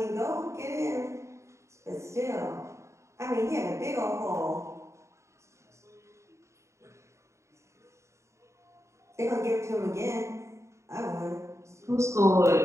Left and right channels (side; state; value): left; late; 0.14 ms